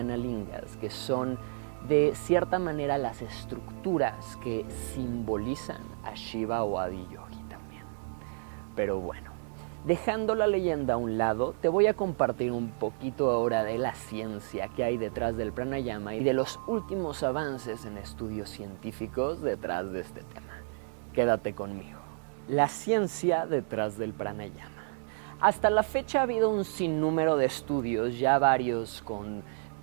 lingas, que son de cierta manera las estructuras que simbolizan a Shiva o a Adiyogi también. Pero bueno, dejando la leyenda a un lado, te voy a compartir un poquito ahora de la ciencia que hay detrás del pranayama y de los últimos avances en estudios científicos detrás de este tema. Quédate conmigo. La ciencia detrás del pranayama. Hasta la fecha ha habido un sinnúmero de estudios, ya varios con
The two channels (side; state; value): left; silent; digital silence